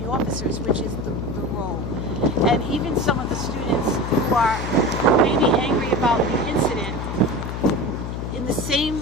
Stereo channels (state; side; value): noise; left; hum, 5 dB below the sound